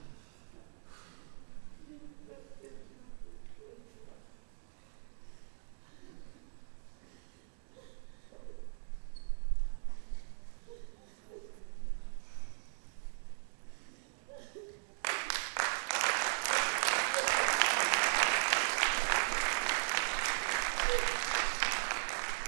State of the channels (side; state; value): left; silent; digital silence